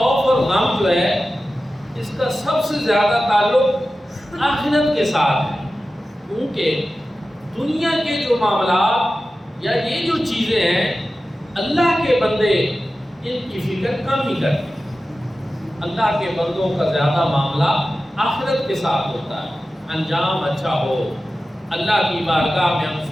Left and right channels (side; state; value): both; normal; correlation 0.94